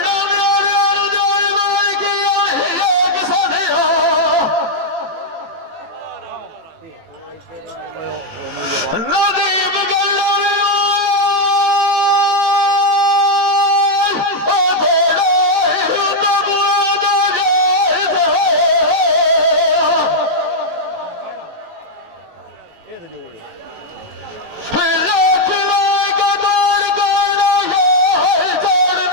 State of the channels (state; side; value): late; left; 18 ms